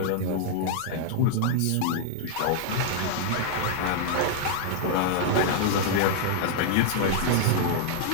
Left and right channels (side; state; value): both; different; correlation -0.01